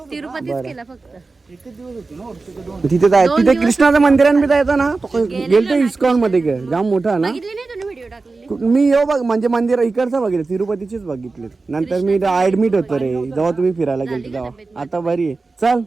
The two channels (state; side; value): quieter; left; 3.8 dB